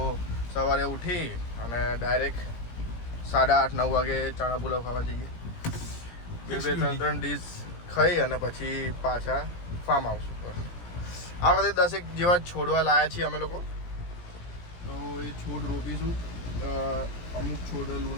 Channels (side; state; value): right; late; 17 ms